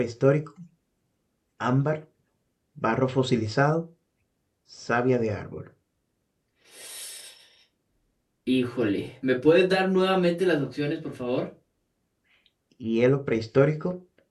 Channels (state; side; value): identical; both; correlation 1.00